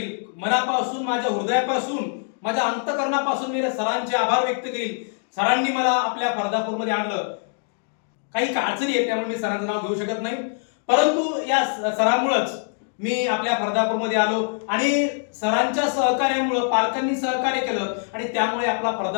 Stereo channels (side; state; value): right; silent; 63 dB below the other